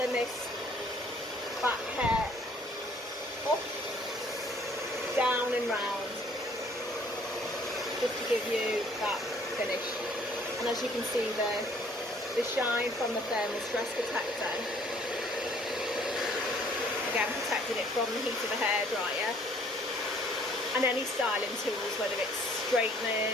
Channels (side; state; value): both; normal; correlation 0.59